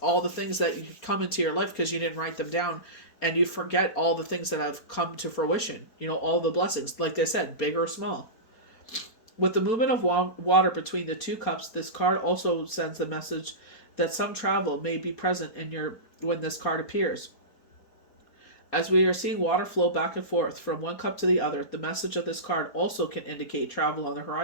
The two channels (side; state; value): right; late; 4.5 ms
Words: all the things that come into your life because you didn't write them down, and you forget all the things that have come to fruition. All the blessings, like they said, big or small. With the movement of water between the two cups, this card also sends the message that some travel may be present when this card appears. As we are seeing water flow back and forth from one cup to the other, the message of this card also can indicate travel on the